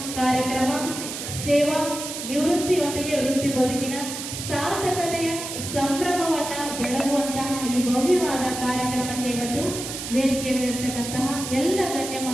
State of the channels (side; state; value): right; noise; hiss, 7 dB below the sound